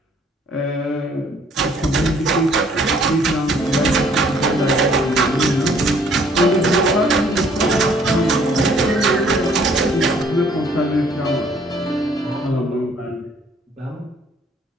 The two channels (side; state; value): both; normal; correlation 0.61